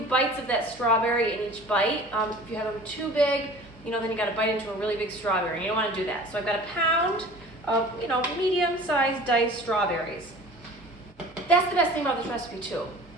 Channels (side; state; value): both; normal; correlation 0.43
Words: of that strawberry in each bite. If you have them too big, then you got to bite into a really big strawberry, and you don't want to do that. So I've got a pound of, medium-sized diced strawberries. That's the best thing about this recipe too.